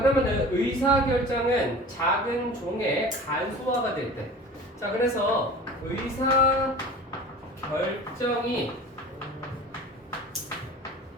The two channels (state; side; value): normal; both; correlation 0.39